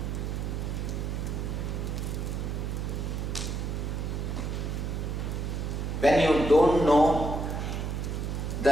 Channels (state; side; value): noise; right; hum, 2 dB below the sound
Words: When you don't know